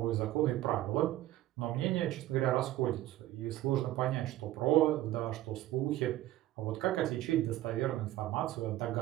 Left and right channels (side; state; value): left; quieter; 14.9 dB